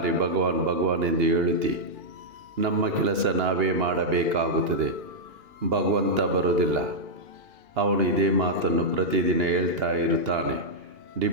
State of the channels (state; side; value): late; left; 2.9 ms